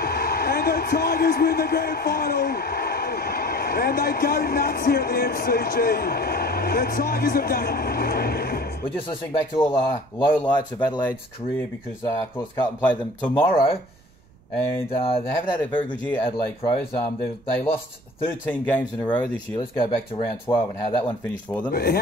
the Tigers win the grand final. And they go nuts here at the MCG. The Tigers have done it. We're just listening back to all the lowlights of Adelaide's career because, of course, Carlton play them tomorrow. And they haven't had a very good year, Adelaide Crows. They lost 13 games in a row this year. Let's go back to round 12 and how that one finished for them.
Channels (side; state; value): right; noise; rumble, 28 dB below the sound